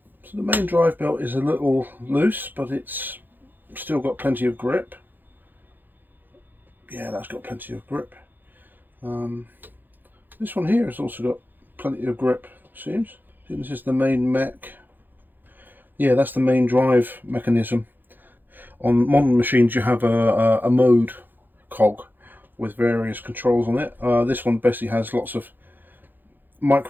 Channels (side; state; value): left; late; 0.090 ms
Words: So the main drive belt is a little loose, but it's still got plenty of grip. Yeah, that's got plenty of grip. This one here has also got plenty of grip, seems. This is the main mech. Yeah, that's the main drive mechanism. On modern machines you have a mode cog with various controls on it. This one basically has lots of